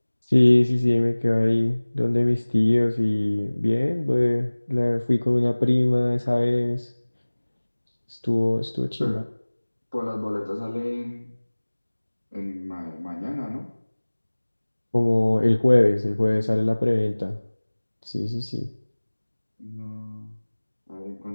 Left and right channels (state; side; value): inverted; both; correlation -1.00